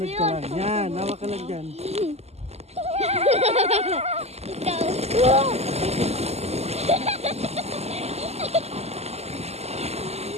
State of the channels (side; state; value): left; late; 0.30 ms